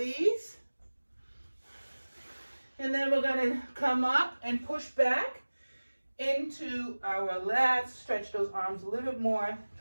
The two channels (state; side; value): inverted; both; correlation -1.00